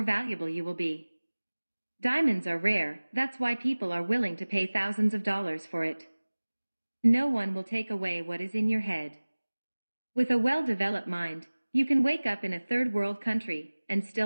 valuable you will be. Diamonds are rare, that's why people are willing to pay thousands of dollars for it. No one will take away what is in your head. With a well-developed mind, you can wake up in a third world country and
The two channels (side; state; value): both; inverted; correlation -1.00